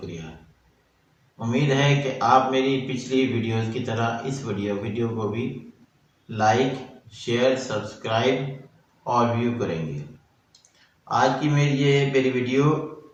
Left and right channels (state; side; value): identical; both; correlation 1.00